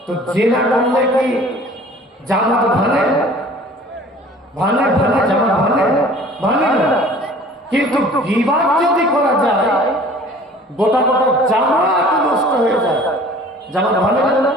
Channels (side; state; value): both; normal; correlation 0.48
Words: তো জেনা করলে কি জামাত ভাঙে? ভাঙে ভাঙে, জামাত ভাঙে ভাঙে না। কিন্তু গীবত যদি করা যায় গোটা গোটা জামাত নষ্ট হয়ে যায়। জামাত ভাঙে না?